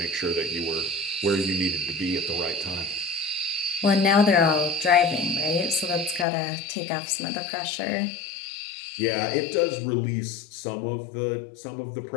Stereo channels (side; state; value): right; drops out; at 6.2 s